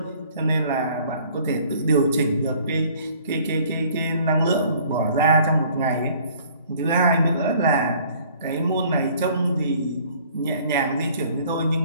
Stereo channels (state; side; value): inverted; both; correlation -0.55